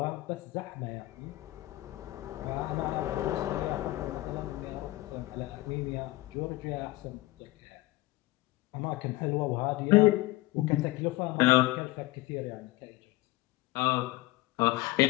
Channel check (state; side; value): quieter; right; 19.4 dB